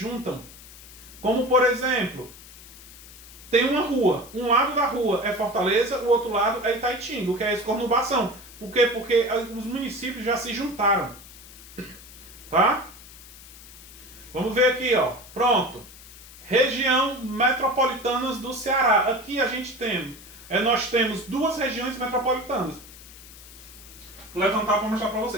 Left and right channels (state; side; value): noise; left; hiss, 18 dB below the sound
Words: Como, por exemplo, tem uma rua. Um lado da rua é Fortaleza, o outro lado é Itaitinga, o que é essa conurbação. Por quê? Porque os municípios já se juntaram. Tá? Vamos ver aqui, ó. Pronto. Região metropolitanas do Ceará. Aqui a gente tem, nós temos duas regiões metropolitanas. Vou levantar para mostrar para